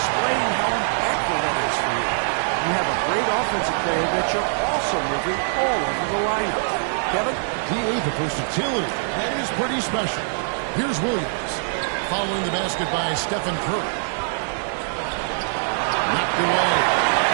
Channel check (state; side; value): silent; left; digital silence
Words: how impactful that is for you. You have a great offensive player that you're also moving all over the lineup. Kevin? The versatility. That is pretty special. Here's Williams. Following the basket by Stephen Curry. Knocked away.